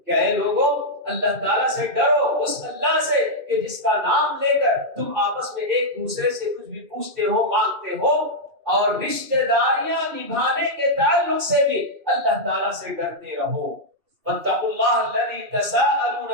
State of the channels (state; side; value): late; left; 2.7 ms